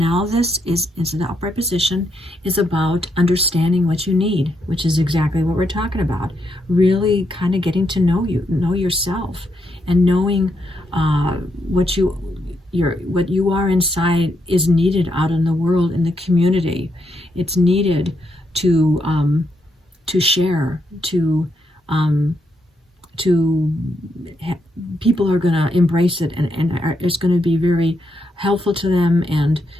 this is in the upright position, is about understanding what you need, which is exactly what we're talking about. Really kind of getting to know yourself, and knowing what you are inside is needed out in the world, in the community. It's needed to share, people are going to embrace it, and it's going to be very helpful to them and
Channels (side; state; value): both; normal; correlation 0.80